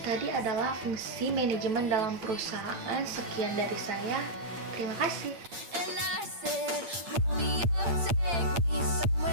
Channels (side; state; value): left; late; 8.7 ms